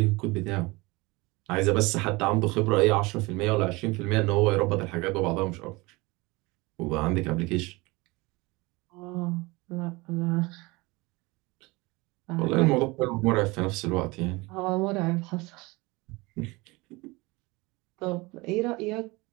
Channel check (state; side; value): quieter; left; 23.7 dB